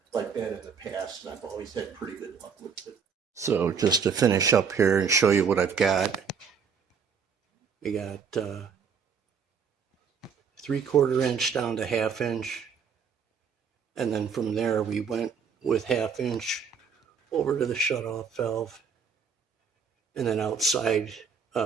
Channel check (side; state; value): left; quieter; 6.3 dB